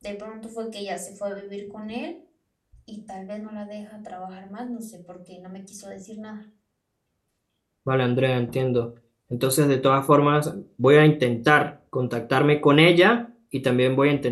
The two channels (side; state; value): both; identical; correlation 1.00